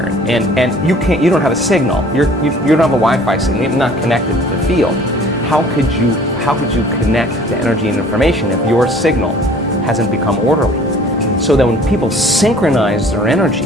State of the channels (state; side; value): normal; both; correlation 0.51